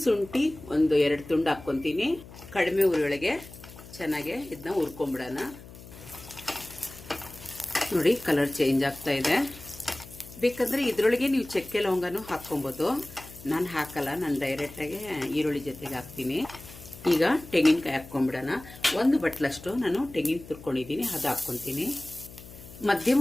ಶುಂಠಿ ಒಂದು 2 ತುಂಡು ಹಾಕ್ಕೊಂತೀನಿ. ಕಡಿಮೆ ಉರಿಯೊಳಗೆ ಚೆನ್ನಾಗಿ ಇದನ್ನ ಹುರ್ಕೊಂಡ್ಬಿಡೋಣ. ನೋಡಿ, ಕಲರ್ ಚೇಂಜ್ ಆಗ್ತಾ ಇದೆ. ಬೇಕಂದ್ರೆ ಇದರೊಳಗೆ ನೀವು ಚಕ್ಕೆ ಲವಂಗನೂ ಹಾಕ್ಕೊಬೋದು. ನಾನು ಹಾಕಲ್ಲ, ನಾನು ಡೈರೆಕ್ಟಾಗಿ ಈರುಳ್ಳಿ ಜೊತೆಗೆ ಹಾಕ್ತೀನಿ. ಈಗ ತೆಂಗಿನಕಾಯಿ ಹಾಕ್ಕೊಂಡ್ಬಿಡೋಣ. 1 ಬಟ್ಲಷ್ಟು ನಾನು ತೆಂಗಿನ ತುರ್ಕೊಂಡಿದ್ದೀನಿ, ಅದು ಹಾಕ್ಕೊಂತೀನಿ.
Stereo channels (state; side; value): noise; left; hum, 17 dB below the sound